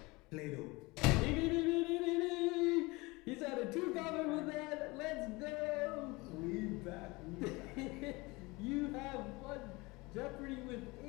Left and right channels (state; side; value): quieter; right; 23.9 dB